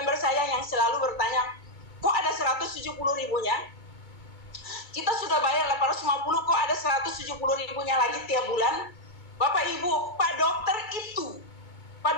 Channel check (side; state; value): right; late; 2.2 ms